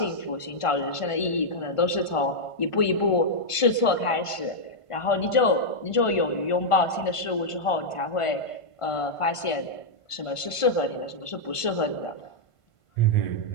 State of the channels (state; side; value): late; right; 1.5 ms